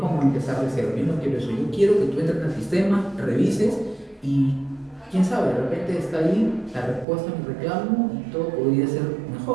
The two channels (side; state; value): left; drops out; at 7.1 s